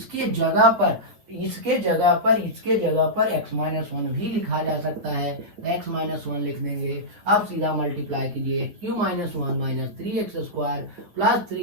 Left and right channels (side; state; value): left; late; 10 ms